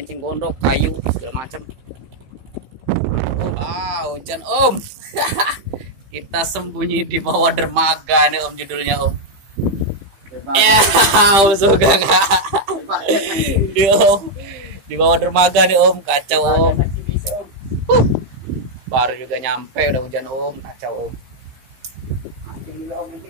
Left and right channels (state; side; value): late; left; 15 ms